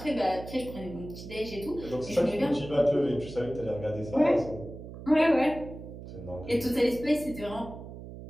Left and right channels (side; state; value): right; noise; hum, 12 dB below the sound